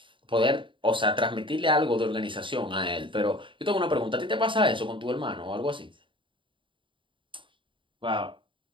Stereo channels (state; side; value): late; left; 0.24 ms